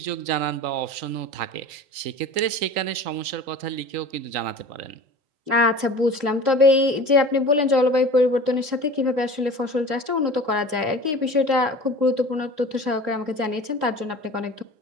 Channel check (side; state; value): left; late; 3.3 ms